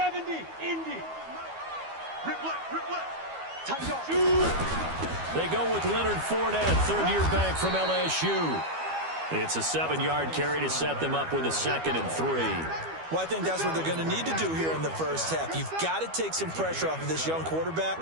Indy. Rip left. Tight off. They go with Leonard Fournette, third-year back from LSU. It's a 7-yard carry to set them up with a 2nd and 3. Well, I think that's what they're going to need to do here in the first half. You've got to take some pressure off of this young quarterback,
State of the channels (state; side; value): late; left; 12 ms